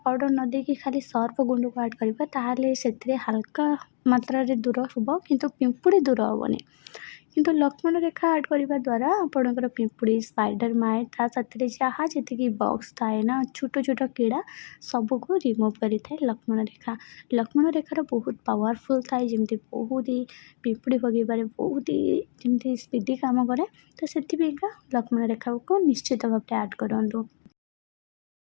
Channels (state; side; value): silent; right; digital silence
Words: ପାଉଡ଼ର ନ ଦେଇକି ଖାଲି ସର୍ପ ଗୁଣ୍ଡକୁ ଆଡ଼୍ କରିବା, ତାହେଲେ ସେଥିରେ ହାଲକା ମାତ୍ରାରେ ଦୂର ହେବ, କିନ୍ତୁ ପିମ୍ପୁଡ଼ି ଦୂର ହେବନି। କିନ୍ତୁ ଲକ୍ଷ୍ମଣ ରେଖା ଆଡ଼୍ କରିବା ଦ୍ୱାରା ଆପଣଙ୍କର ପିମ୍ପୁଡ଼ି, ସ୍ପାଇଡର ମାଇଟ୍, ତା ସାଥିରେ ଯାହା ଯେତିକି ବକ୍ସ ଥାଏ ନା, ଛୋଟ ଛୋଟ କୀଡ଼ା, ସବୁକୁ ରିମୁଭ୍ କରିଥାଏ ଲକ୍ଷ୍ମଣ ରେଖା। ଲକ୍ଷ୍ମଣ ରେଖାର ବହୁତ ପାୱାରଫୁଲ୍ ଥାଏ, ଯେମିତି ବହୁତ ପିମ୍ପୁଡ଼ି ଭଗେଇବାରେ ବହୁତ ଯେମିତି ସ୍ପିଡ଼ି କାମ କରେ। ତ ସେଥିପାଇଁକା ଲକ୍ଷ୍ମଣ ରେଖାକୁ ନିଶ୍ଚିତ ଭାବରେ ଆଡ଼୍ କରନ୍ତୁ।